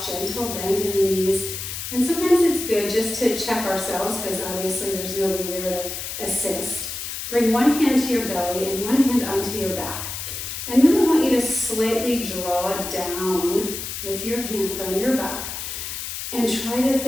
gentle bend in the knees. And sometimes it's good just to check ourselves, because obviously there's nobody there to assist. Bring one hand to your belly and one hand onto your back. And then I want you to slightly draw down with your hand on your back and try to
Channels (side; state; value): left; noise; hiss, 6 dB below the sound